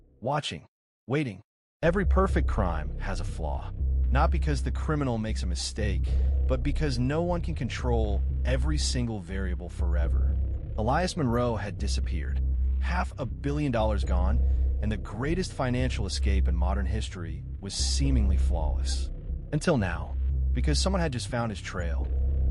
watching, waiting. Every perfect crime has a flaw. Not because the criminal makes a mistake, but because no one can control every single variable forever. Elias Monroe had disappeared, $500 million gone, and the greatest financial escape in modern history was seemingly flawless. Until now, because someone had just found his trail.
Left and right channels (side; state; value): both; identical; correlation 1.00